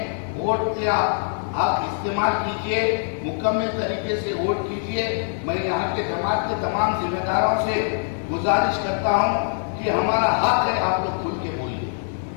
वोट का आप इस्तेमाल कीजिए, मुकम्मल तरीके से वोट कीजिए। मैं यहाँ के जमात के तमाम जिम्मेदारों से गुजारिश करता हूँ कि हमारा हक है, आप लोग खुल के बोलिए।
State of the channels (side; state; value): right; silent; 56 dB below the other